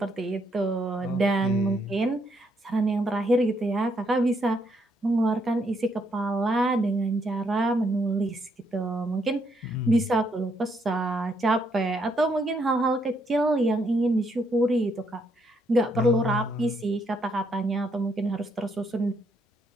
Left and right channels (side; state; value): both; normal; correlation 0.74